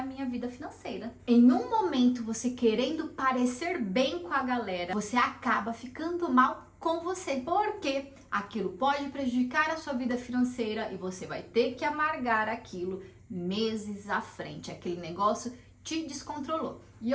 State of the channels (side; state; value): both; identical; correlation 1.00